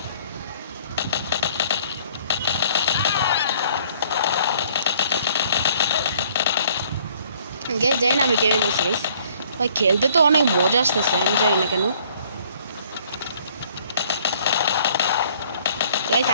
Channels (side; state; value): both; inverted; correlation -0.60